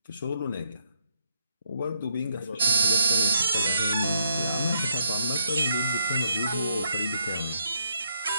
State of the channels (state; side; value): inverted; both; correlation -0.76